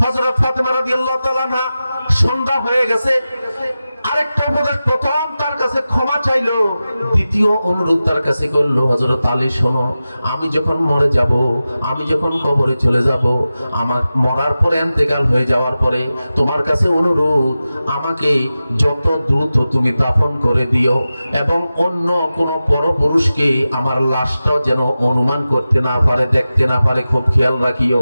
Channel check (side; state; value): both; inverted; correlation -0.94